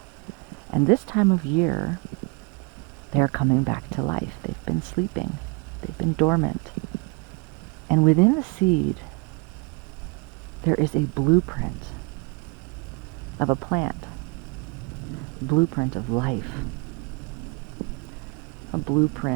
And this time of year, they're coming back to life. They've been sleeping. They've been dormant. And within the seed, there is a blueprint of a plant, blueprint of life, a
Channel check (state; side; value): quieter; left; 30.9 dB